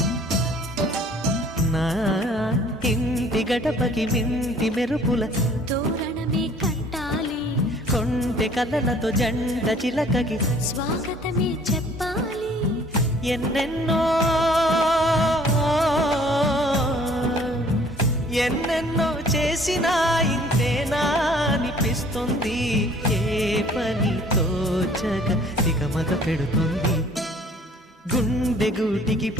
నా ఇంటి గడపకి మింటి మెరుపుల తోరణమే కట్టాలి, కొంటె కలలతో జెండ చిలకకి స్వాగతమే చెప్పాలి. ఎన్నెన్నో ఎన్నెన్నో చేసినా ఇంతేనా అనిపిస్తుంది. ఏ పని తోచక తికమక పెడుతుంది. గుండె గూటికి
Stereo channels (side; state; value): both; normal; correlation 0.55